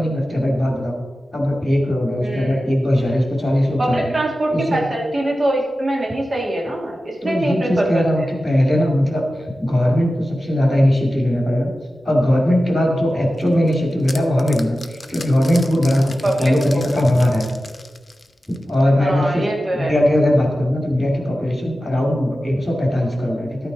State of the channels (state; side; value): normal; both; correlation 0.94